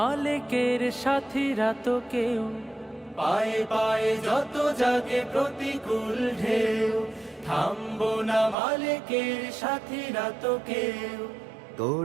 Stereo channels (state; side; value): drops out; left; at 8.6 s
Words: সাথীরা তো কেউ। পায়ে পায়ে যত জাগে প্রতিকূল ঢেউ, থামবো না মালিকের সাথীরা তো কেউ।